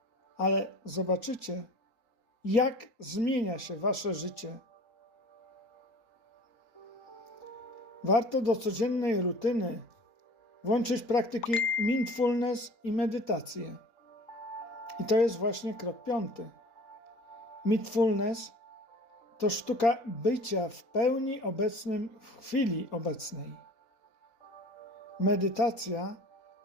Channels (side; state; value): right; late; 4.3 ms